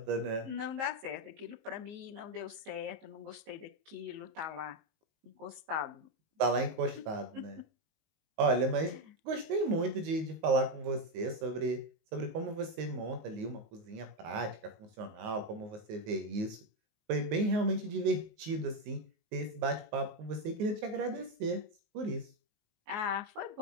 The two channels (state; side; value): late; left; 19 ms